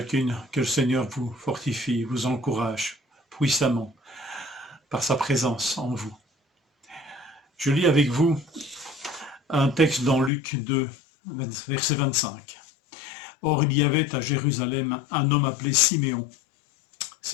que le Seigneur vous fortifie, vous encourage puissamment par sa présence en vous. Je lis avec vous un texte dans Luc 2, verset 25. Or il y avait à Jérusalem un homme appelé Siméon.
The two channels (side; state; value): right; drops out; at 10.3 s